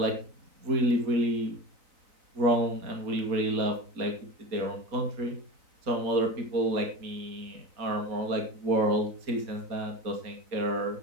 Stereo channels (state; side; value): late; left; 3.9 ms